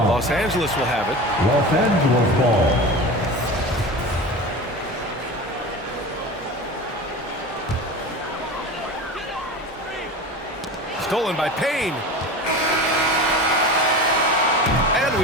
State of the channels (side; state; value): both; normal; correlation 0.31